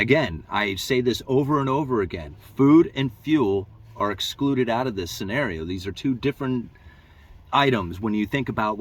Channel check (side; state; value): both; identical; correlation 1.00